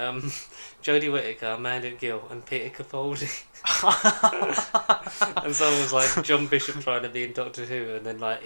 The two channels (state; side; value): inverted; both; correlation -1.00